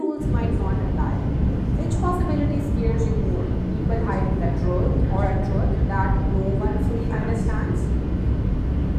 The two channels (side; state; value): both; identical; correlation 1.00